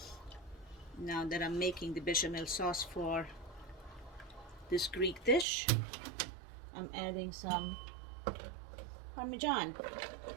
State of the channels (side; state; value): left; drops out; at 5.5 s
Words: Now that I'm making the bechamel sauce for this Greek dish, I'm adding some Parmesan.